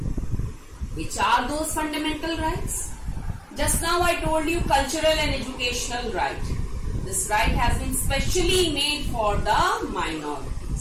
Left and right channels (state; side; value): identical; both; correlation 1.00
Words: Which are those fundamental rights? Just now I told you cultural and educational right. This right has been specially made for the